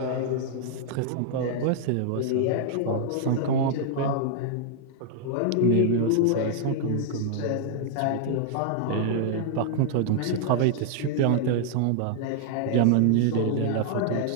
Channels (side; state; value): both; different; correlation -0.01